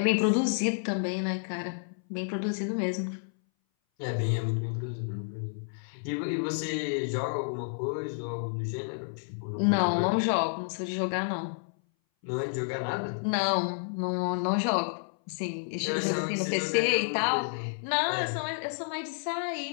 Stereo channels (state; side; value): silent; right; 58 dB below the other